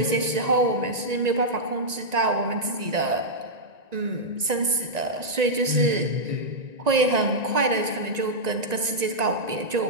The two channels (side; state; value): left; late; 1.9 ms